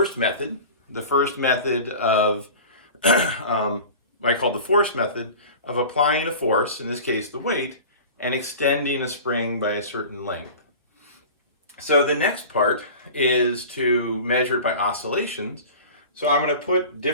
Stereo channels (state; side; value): inverted; both; correlation -0.37